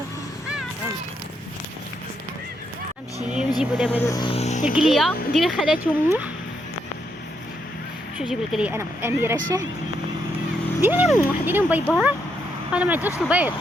نمشي نجيبو دابا القليه ندير خالاتهم. شوف جيب القليه انا اميره شاهد. ديري لهم باي باي. انا ما عنديش البيض.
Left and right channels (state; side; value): normal; both; correlation 0.78